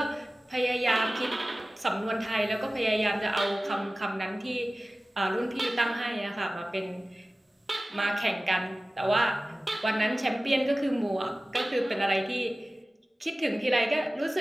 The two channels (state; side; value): normal; both; correlation 0.97